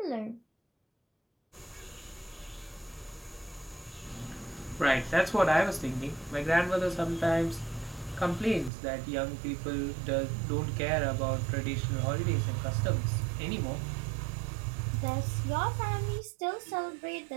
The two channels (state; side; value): drops out; left; at 8.7 s